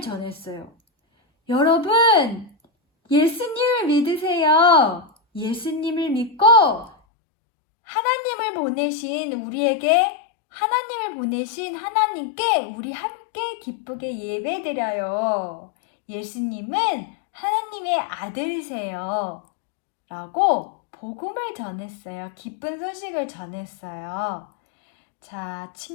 전했어요. 여러분, 예수님을 믿으세요. 예수님을 믿고 하나님을 보내신 우리에게 하나님을 보내신 하나님께 우리 함께 기쁘게 예배드려요. 예수님은 하나님의 아들이세요. 라고 복음을 전했어요. 기쁜 소식을 전했어요. 자,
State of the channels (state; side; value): drops out; right; at 7.0 s